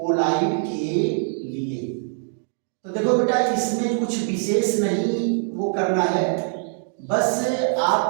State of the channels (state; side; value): silent; left; digital silence